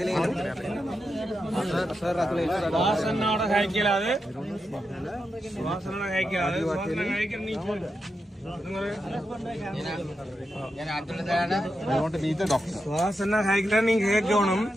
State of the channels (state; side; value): normal; both; correlation 0.87